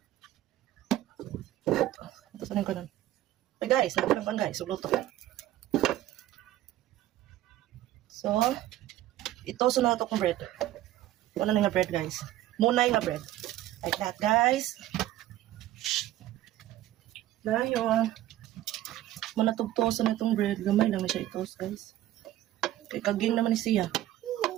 Ito sa nang kanon. Hey guys, nakalang guys, so luto. So, ito sa nato kong bread. Wala na nga bread guys. Munay nga bread. Like that guys. Dayon. Manatugtosan na itong bread. Gamay lang na siya i-toast guys. Kay kaging naman ni siya.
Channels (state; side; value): quieter; left; 14.1 dB